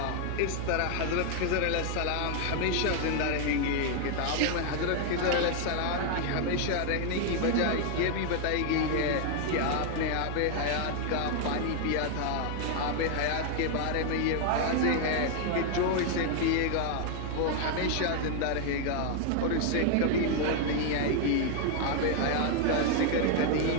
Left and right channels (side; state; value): both; different; correlation 0.00